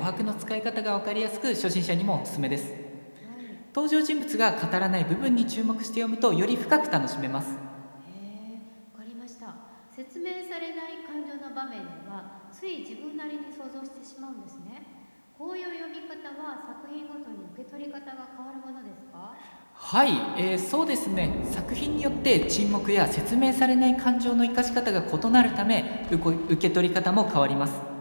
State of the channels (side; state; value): both; inverted; correlation -1.00